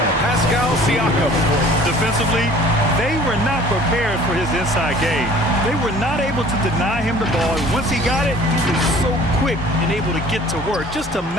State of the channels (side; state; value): both; normal; correlation 0.49